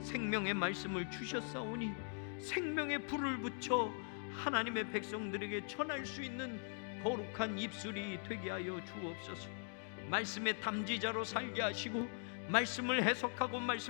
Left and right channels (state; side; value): silent; right; 50 dB below the other